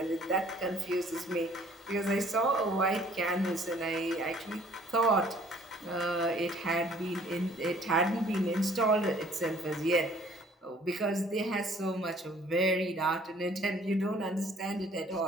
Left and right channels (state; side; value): normal; both; correlation 0.57